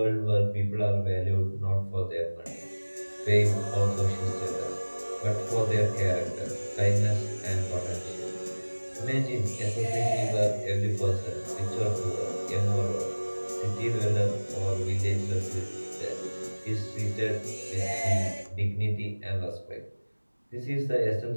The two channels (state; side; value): inverted; both; correlation -1.00